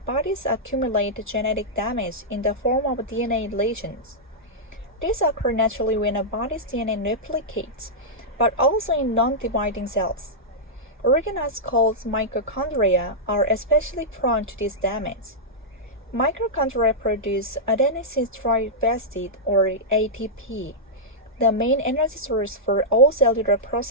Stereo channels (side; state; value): both; normal; correlation -0.10